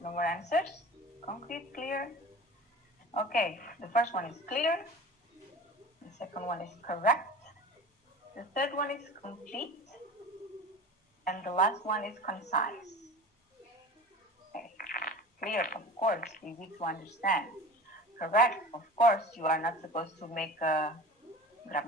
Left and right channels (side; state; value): both; normal; correlation 0.37